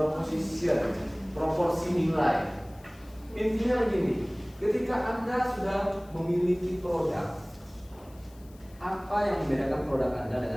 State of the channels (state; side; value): noise; left; hiss, 27 dB below the sound